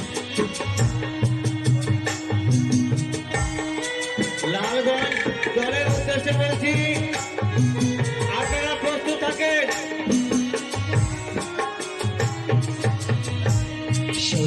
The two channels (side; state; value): both; identical; correlation 1.00